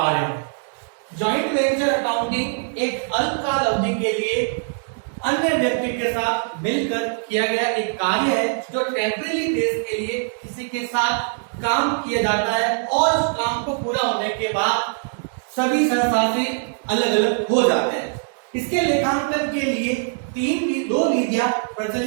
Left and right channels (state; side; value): silent; left; 62 dB below the other